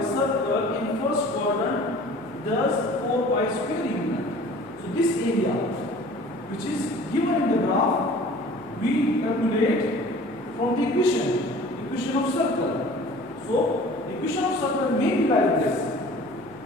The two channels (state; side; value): noise; left; hum, 29 dB below the sound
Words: circle in first quadrant does 4 pi square unit. So this area which is given in the graph we calculate from the equation of circle. So the equation of circle may be like this.